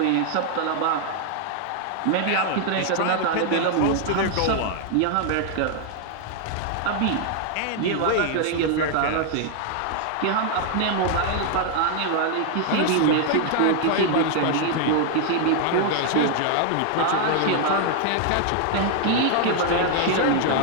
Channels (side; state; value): both; different; correlation 0.00